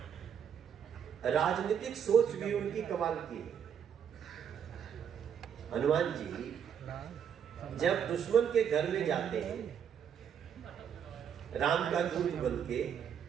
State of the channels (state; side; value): quieter; left; 8.3 dB